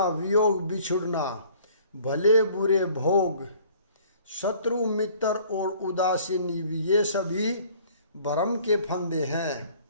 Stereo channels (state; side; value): inverted; both; correlation -0.54